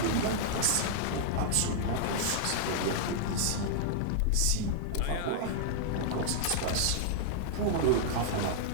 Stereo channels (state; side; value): different; both; correlation -0.01